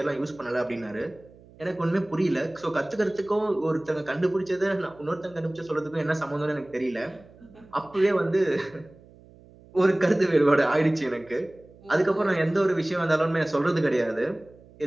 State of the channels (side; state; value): right; noise; hum, 24 dB below the sound